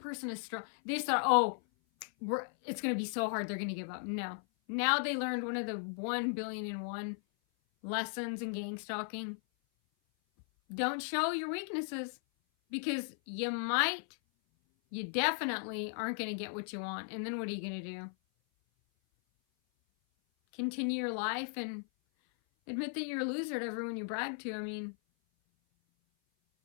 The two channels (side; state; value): right; silent; 54 dB below the other